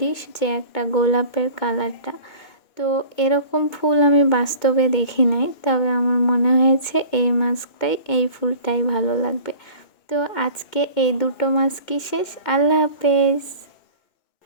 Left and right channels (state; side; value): late; right; 2.2 ms